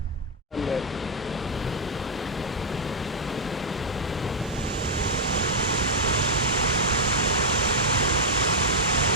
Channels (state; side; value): normal; both; correlation -0.02